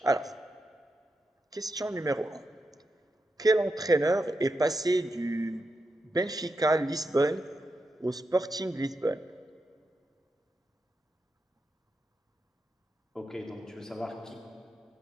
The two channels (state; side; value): normal; both; correlation 0.86